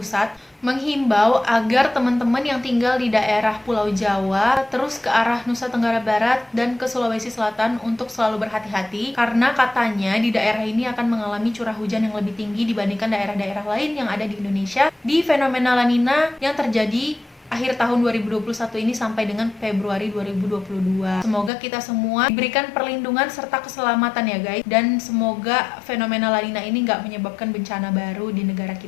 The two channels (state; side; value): drops out; right; at 21.5 s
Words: menghimbau agar teman-teman yang tinggal di daerah Pulau Jawa terus ke arah Nusa Tenggara Barat dan ke Sulawesi Selatan untuk selalu berhati-hati karena katanya di daerah ini akan mengalami curah hujan yang lebih tinggi dibandingkan daerah-daerah lain yang ada di Indonesia di fenomena La Nina yang terjadi akhir tahun 2021 ini sampai dengan Februari 2022. Semoga kita semua diberikan perlindungan serta keselamatan ya guys, dan semoga fenomena La Nina ini nggak menyebabkan bencana baru di negara